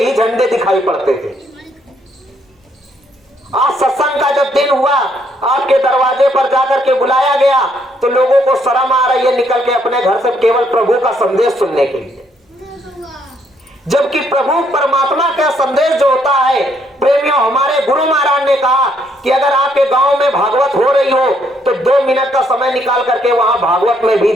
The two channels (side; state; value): both; normal; correlation 0.71